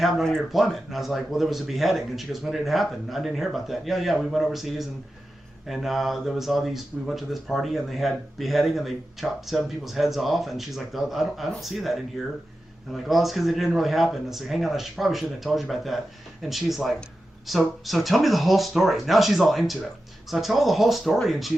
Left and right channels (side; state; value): both; normal; correlation 0.92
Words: on your deployment. And I was like, well, there was a beheading. And she goes, when did it happen? I didn't hear about that. Yeah, we went overseas, and there was all these. We went to this party, and they had beheading, and they chopped 7 people's heads off. And she's like, I don't see that in here. And I'm like, well, it's because it didn't really happen. And I said, hang on, probably shouldn't have told you about that. And she's like, so tell me the whole story. Now she's all into it. So I tell her the whole story, and